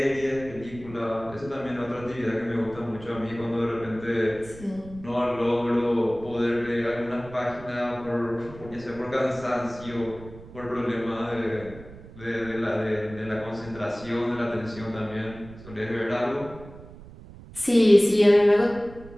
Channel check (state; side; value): noise; right; rumble, 17 dB below the sound